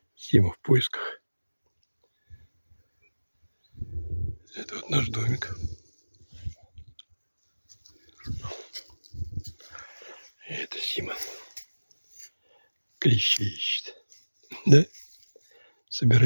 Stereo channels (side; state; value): both; inverted; correlation -1.00